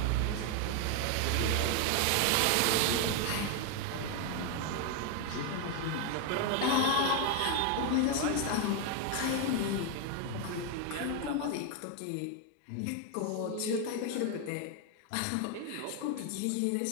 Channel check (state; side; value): different; both; correlation 0.01